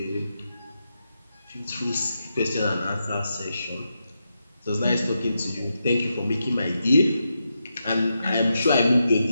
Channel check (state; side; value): inverted; both; correlation -0.86